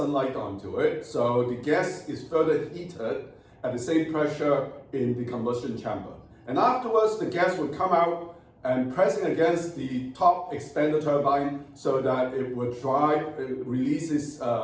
onto it, so the gas is further heated at the same pressure in the combustion chamber. And afterwards, the gas would come out and pressing against the top expander turbine so that it would drive, it releases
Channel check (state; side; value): identical; both; correlation 1.00